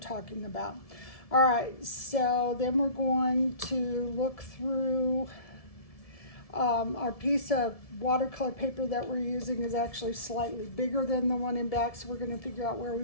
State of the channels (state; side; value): late; right; 1.7 ms